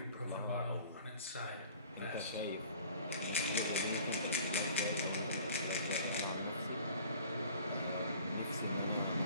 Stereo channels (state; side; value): inverted; both; correlation -0.48